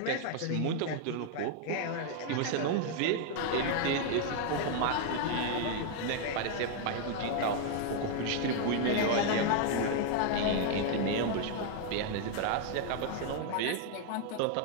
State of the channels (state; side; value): different; both; correlation 0.00